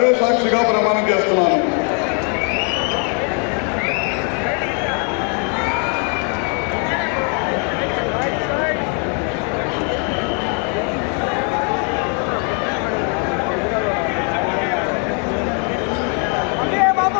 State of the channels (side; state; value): right; quieter; 39.1 dB